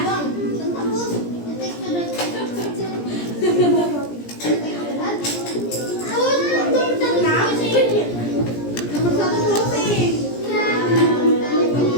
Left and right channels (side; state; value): right; late; 17 ms